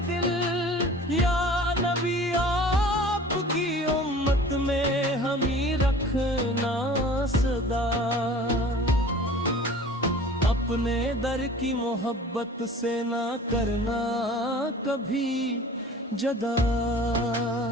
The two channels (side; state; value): both; normal; correlation 0.44